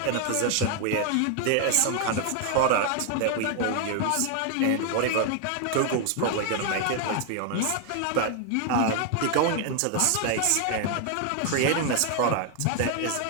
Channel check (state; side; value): different; both; correlation 0.00